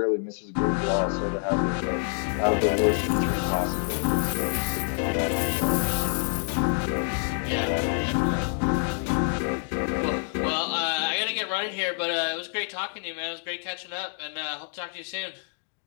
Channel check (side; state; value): right; silent; 56 dB below the other